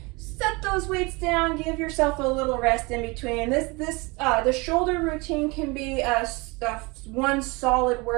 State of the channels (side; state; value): left; quieter; 26.4 dB